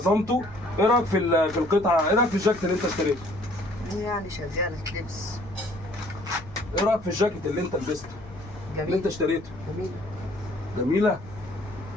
ايه رايك في القطعه؟ ايه رايك في الجاكيت اللي انت اشتريته؟ يعني شغالة لبس. ايه رايك في الجاكيت اللي انت لبسته؟ جميل. اللي انت اشتريته؟ جميل. جميله.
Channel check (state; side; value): noise; left; rumble, 18 dB below the sound